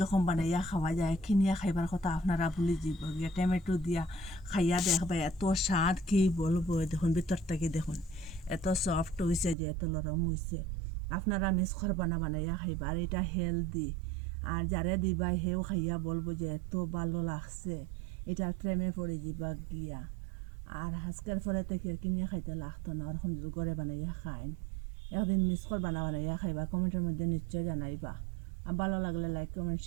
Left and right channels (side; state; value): left; drops out; at 9.6 s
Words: বানাইয়া খাওয়া যায়, কিনিয়া খাইবার কথা আপনারা ভুলে যাব গিয়া। টমেটো দিয়া খাইয়া দেখবা, এত স্বাদ কি বলবো। দেখুন ভিতরটাকে দেখুন, এত সফট হয়েছে যে, এত নরম হয়েছে। আপনারা মিস করবা না, বানাইয়া খাইবা। আর এটা হেলদি, আর যারে দিবা হেও খাইয়া বলবো যে এত ভালো লাগছে, এটা প্রেমে পড়ে যাবা গিয়া। আর আজকের পরে থেকে কিনিয়া খাইতে লাগতো না, ওরকম যদি ঘরে বানাইয়া খাইন। একদিন মিস করবা না, বানাইয়া খাইবা। কমেন্টের মধ্যে নিশ্চয় জানাইবা। আর ভালো লাগলে লাইক কমেন্ট